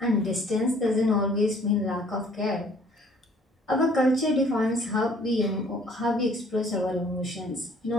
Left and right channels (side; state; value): both; normal; correlation 0.58